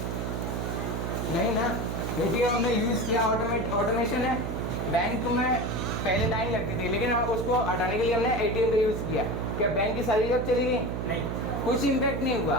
नहीं ना। एटीएम हमने यूज़ किया, ऑटोमेशन है। बैंक में पहले लाइन लगती थी, लेकिन हम उसको हटाने के लिए हमने एटीएम का यूज़ किया। क्या बैंक की सारी जॉब चली गई? नहीं, कुछ इम्पैक्ट नहीं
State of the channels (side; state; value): right; noise; hum, 2 dB below the sound